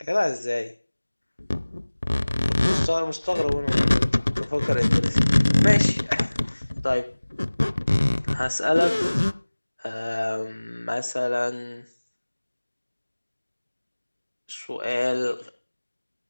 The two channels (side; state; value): both; inverted; correlation -1.00